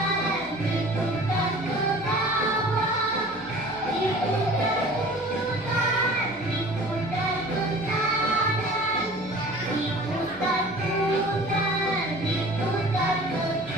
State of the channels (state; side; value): noise; left; hum, 25 dB below the sound